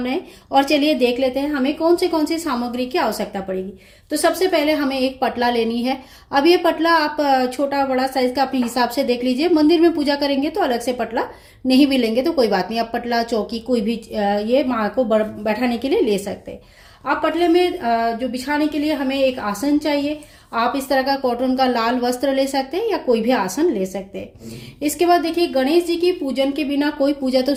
और चलिए देख लेते हैं हमें कौन सी सामग्री की आवश्यकता पड़ेगी। तो सबसे पहले हमें एक पटला लेनी है। अब ये पटला आप छोटा बड़ा साइज का अपने हिसाब से देख लीजिए। मंदिर में पूजा करेंगे तो अलग से पटला नहीं भी लेंगे तो कोई बात नहीं, आप पटला चौकी कोई भी ये माँ को बैठाने के लिए ले सकते हैं। आप पटले में जो बिछाने के लिए हमें एक आसन चाहिए। आप इस तरह का कॉटन का लाल वस्त्र ले सकते हैं या कोई भी आसन ले सकते हैं। इसके बाद देखिए, गणेश जी की पूजन के बिना कोई पूजा तो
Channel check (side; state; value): both; identical; correlation 1.00